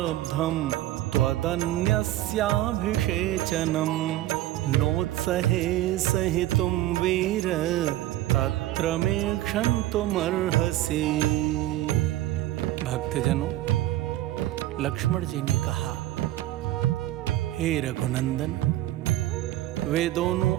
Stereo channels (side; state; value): left; quieter; 15.0 dB